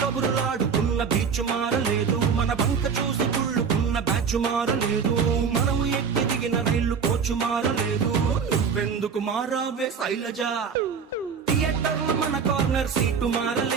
కబురులాడుకున్న బీచ్ మారలేదు, మన బంక చూసి కుళ్ళుకున్న బ్యాచ్ మారలేదు, మనం ఎక్కి దిగిన రైలు కోచు మారలేదు. నువ్వెందుకు మారావే శైలజ? థియేటర్లో మన కార్నర్ సీటు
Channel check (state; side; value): quieter; left; 6.3 dB